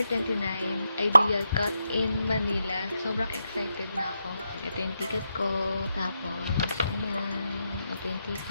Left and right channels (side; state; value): both; inverted; correlation -0.84